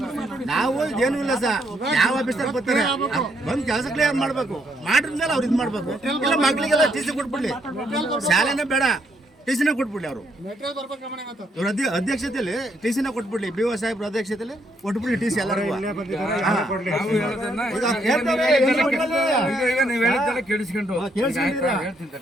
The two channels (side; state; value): both; normal; correlation 0.73